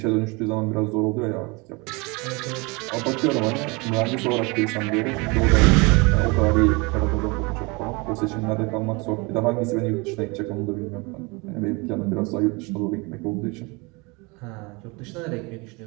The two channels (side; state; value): left; quieter; 27.5 dB